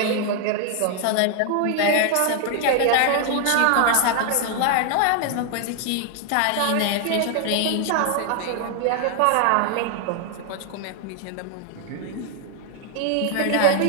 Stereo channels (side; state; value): both; different; correlation 0.00